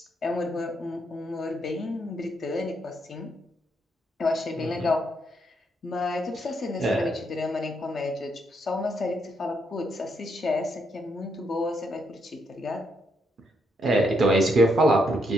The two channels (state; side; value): normal; both; correlation 0.77